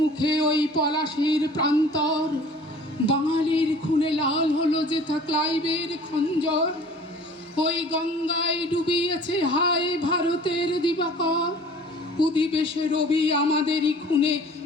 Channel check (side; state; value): both; normal; correlation 0.48